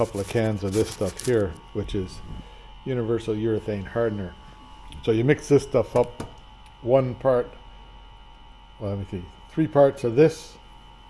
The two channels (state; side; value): identical; both; correlation 1.00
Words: of cans of this stuff here, which is universal urethane hardener. So you mix this stuff up, 1 part, well, let me see, 3 parts of this